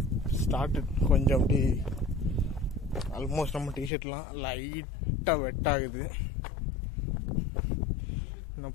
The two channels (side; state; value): right; drops out; at 3.9 s